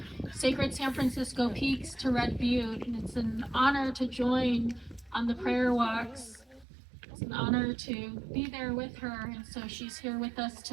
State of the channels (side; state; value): left; drops out; at 6.7 s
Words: Sacred San Francisco Peaks to Red Butte. And it's an honor to join on the prayer walks. It's an honor to be there with her. And so she's here with us